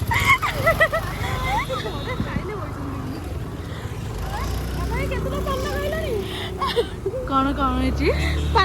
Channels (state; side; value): identical; both; correlation 1.00